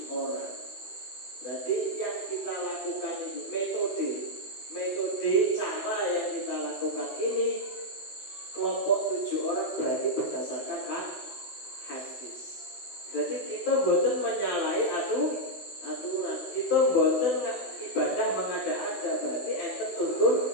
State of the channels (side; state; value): right; late; 16 ms